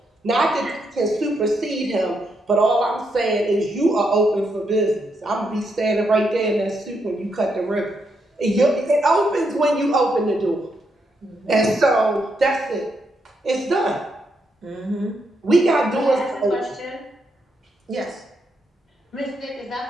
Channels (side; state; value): both; normal; correlation 0.80